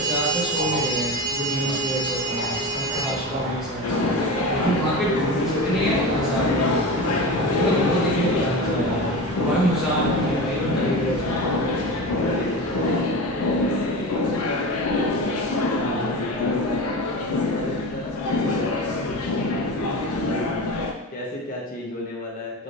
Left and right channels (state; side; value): normal; both; correlation 0.26